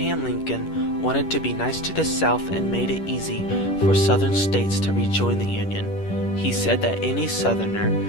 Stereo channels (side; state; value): right; late; 10 ms